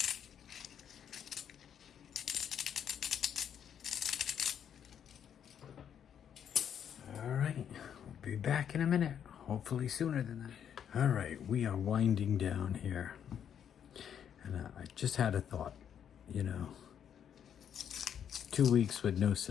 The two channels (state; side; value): quieter; right; 8.7 dB